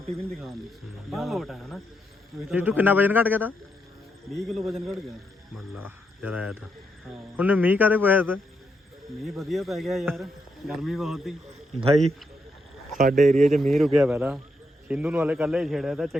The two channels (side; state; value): both; normal; correlation 0.80